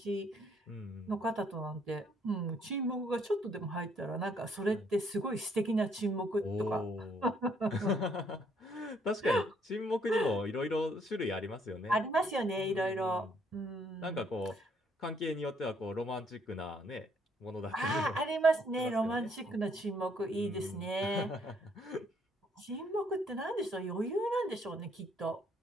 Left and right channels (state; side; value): normal; both; correlation 0.67